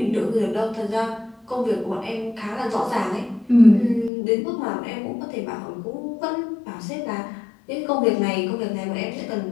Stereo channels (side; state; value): right; drops out; at 4.1 s